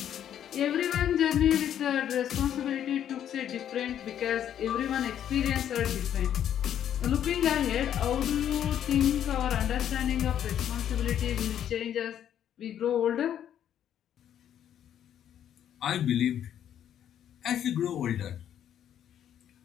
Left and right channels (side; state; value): right; quieter; 10.1 dB